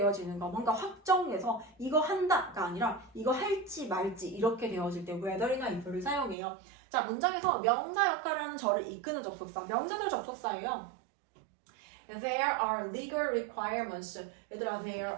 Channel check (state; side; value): drops out; left; at 6.4 s